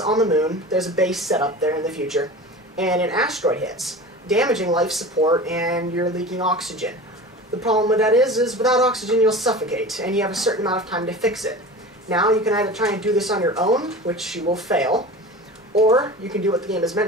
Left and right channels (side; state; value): both; normal; correlation 0.35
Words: the moon. There's a base set up there in the future, and an asteroid hits, damaging life support, and you're leaking oxygen. The problem with that is without oxygen you'll suffocate, and you have a certain amount of time to fix it. Now you can either try and do this on your own, which you will fail, or you can do what the game is